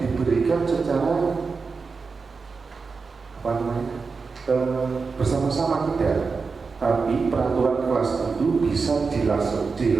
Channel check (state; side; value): quieter; left; 4.7 dB